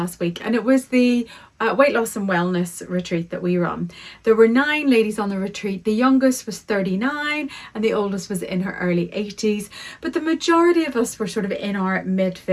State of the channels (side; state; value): both; identical; correlation 1.00